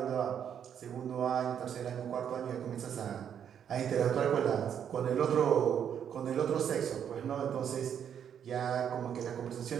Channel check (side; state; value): left; quieter; 8.6 dB